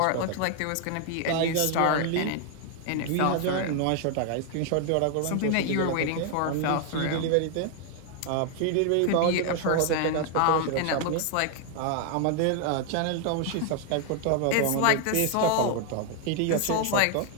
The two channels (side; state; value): both; different; correlation 0.00